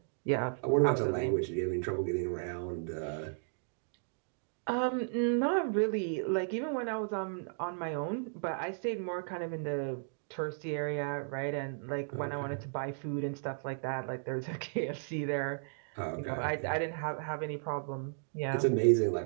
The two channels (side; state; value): left; silent; digital silence